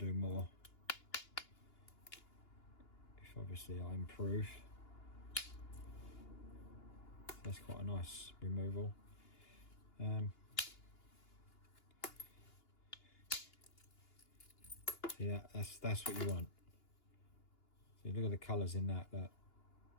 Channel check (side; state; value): right; late; 2.8 ms